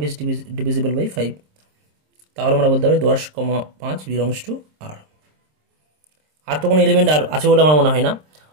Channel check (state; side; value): late; left; 26 ms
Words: ইজ ডিভিজিবল বাই 5, তাহলে আমরা বলতে পারি 10, 5 বিলংস টু আর। আর তো কোনো এলিমেন্ট আর আছে বলে আমার মনে হয় না।